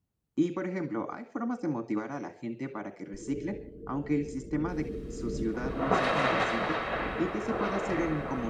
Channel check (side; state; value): both; identical; correlation 1.00